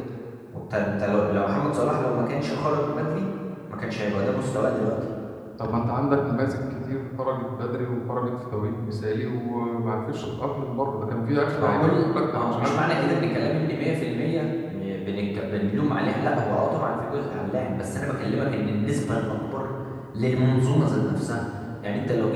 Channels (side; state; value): both; identical; correlation 1.00